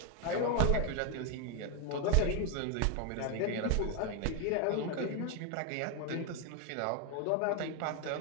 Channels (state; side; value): different; both; correlation 0.01